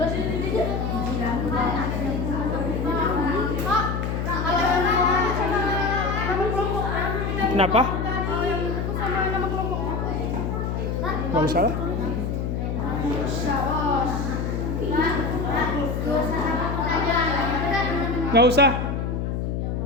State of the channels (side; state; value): left; noise; hum, 1 dB below the sound